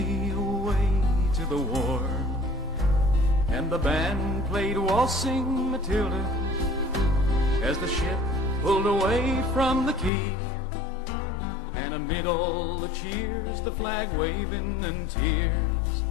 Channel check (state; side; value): drops out; right; at 10.1 s